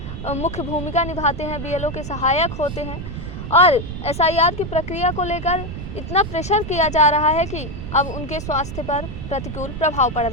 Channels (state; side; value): noise; right; rumble, 8 dB below the sound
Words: मुख्य भूमिका निभाते हैं, बीएलओ के सहायक होते हैं। और एसआईआर की प्रक्रिया को लेकर इतना प्रेशर किया जा रहा है कि अब उनके स्वास्थ्य पर प्रतिकूल प्रभाव पड़